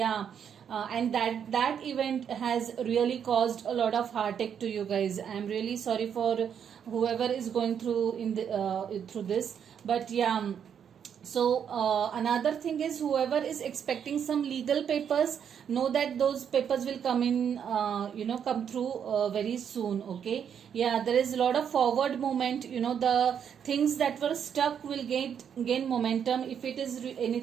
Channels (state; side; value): quieter; left; 8.1 dB